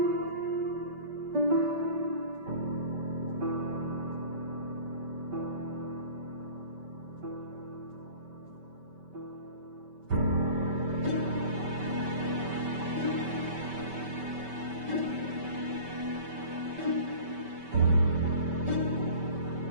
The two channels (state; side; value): late; left; 5.2 ms